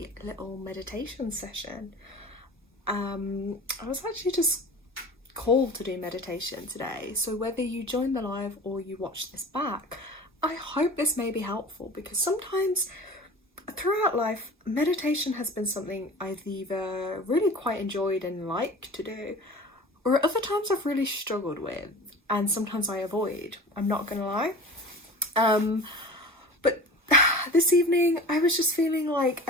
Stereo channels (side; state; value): both; normal; correlation 0.37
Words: little meditation session. I was actually just called to do meditation today, so whether you join the live or you watch this back, I hope this may be helpful, because sometimes throughout life, meditation has been something I've either really quite enjoyed and liked to do, or at other times I've really struggled with, and sometimes I avoid. I'm not gonna lie. But this evening I was just feeling like